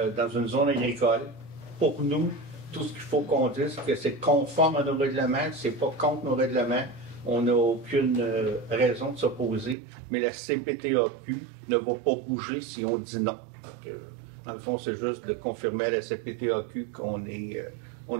dans une zone agricole. Pour nous, tout ce qu'il faut qu'on dise, c'est que c'est conforme à nos règlements, c'est pas contre nos règlements. On n'a aucune raison de s'opposer, mais la CPTAQ ne va pas bouger si on dit non. Donc, dans le fond, c'est juste de confirmer à la CPTAQ qu'on est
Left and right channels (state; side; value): drops out; left; at 9.8 s